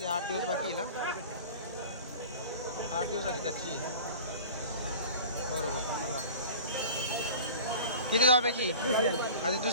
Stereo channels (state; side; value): inverted; both; correlation -0.40